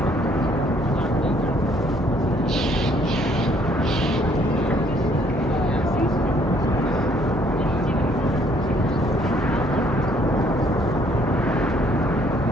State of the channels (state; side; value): normal; both; correlation 0.64